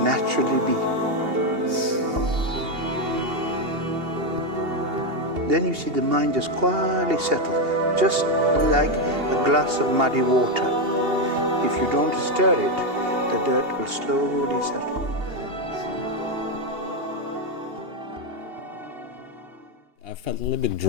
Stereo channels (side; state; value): left; late; 2.8 ms